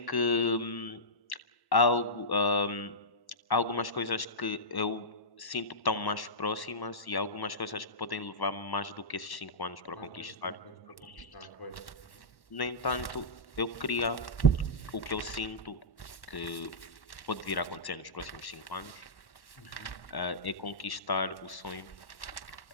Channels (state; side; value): late; right; 1.2 ms